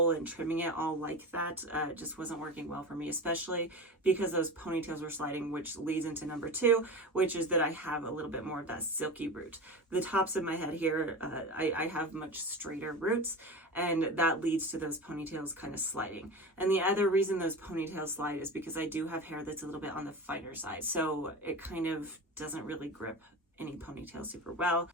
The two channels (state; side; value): normal; both; correlation 0.28